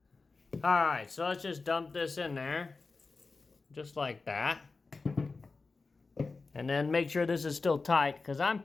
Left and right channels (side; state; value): right; quieter; 4.0 dB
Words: All right, so let's just dump this in there. Just like that. And then make sure this is still tight, because I'm